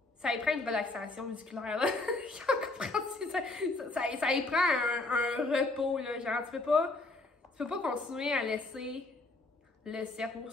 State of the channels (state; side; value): quieter; right; 3.1 dB